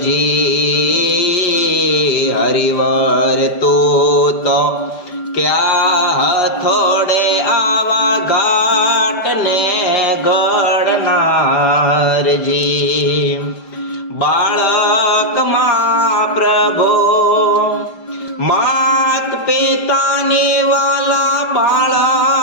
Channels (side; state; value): right; late; 5.0 ms